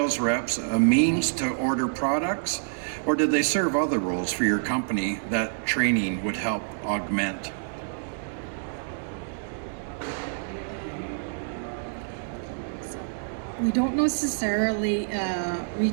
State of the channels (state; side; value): silent; left; digital silence